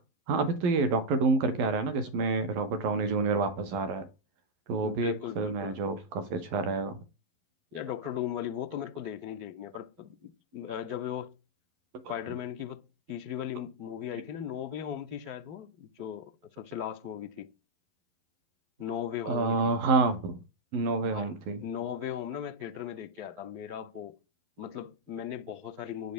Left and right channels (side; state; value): left; late; 11 ms